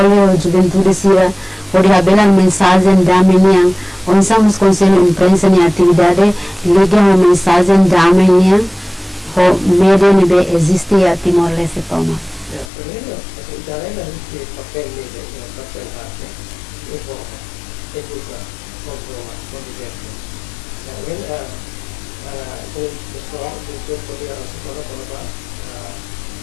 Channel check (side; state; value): right; drops out; at 12.7 s